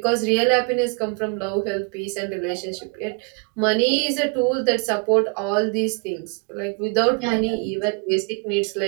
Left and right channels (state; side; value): quieter; left; 33.9 dB